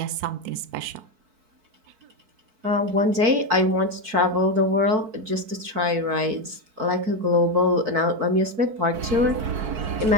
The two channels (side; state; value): left; late; 4.6 ms